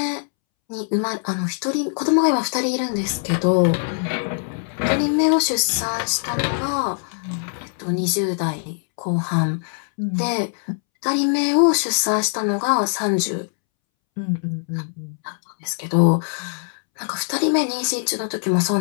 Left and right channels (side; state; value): right; silent; 64 dB below the other